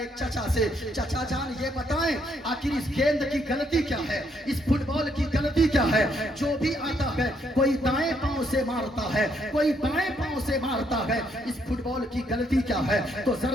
چچا سے, چچا جان یہ بتائیں آخر اس گیند کی غلطی کیا ہے, اس فٹ بال کی غلطی کیا ہے؟ جو بھی آتا ہے کوئی دائیں پاؤں سے مارتا ہے, کوئی بائیں پاؤں سے مارتا ہے, اس فٹ بال کی غلطی کیا ہے؟ تو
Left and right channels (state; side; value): normal; both; correlation 0.72